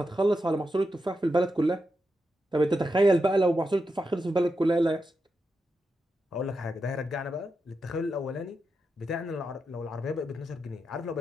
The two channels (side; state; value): both; normal; correlation 0.87